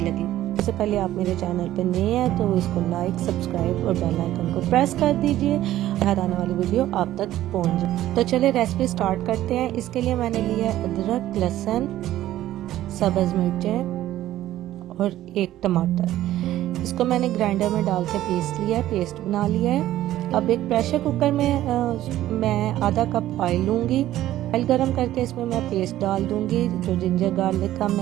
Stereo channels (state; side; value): quieter; left; 13.8 dB